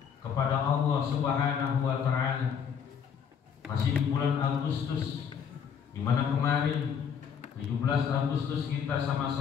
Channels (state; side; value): quieter; right; 7.4 dB